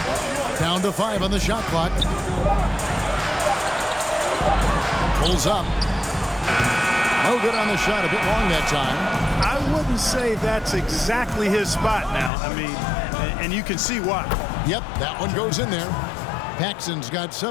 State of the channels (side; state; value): right; drops out; at 12.3 s